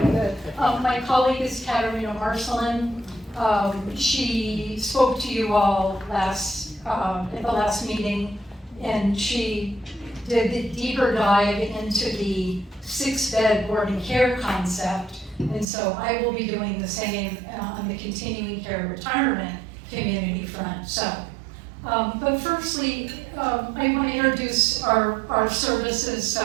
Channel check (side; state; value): left; drops out; at 15.7 s